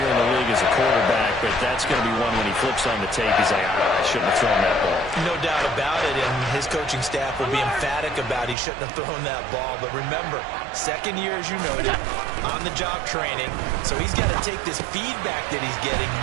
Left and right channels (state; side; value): drops out; left; at 8.6 s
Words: in the league as a quarterback, but that's going to be one when he flips on the tape, he's like, I shouldn't have thrown that ball. No doubt about it, and his coaching staff will be emphatic about he shouldn't have thrown that ball. But remember, second year, as you noted, on-the-job training, so he's got to take this feedback that he's getting,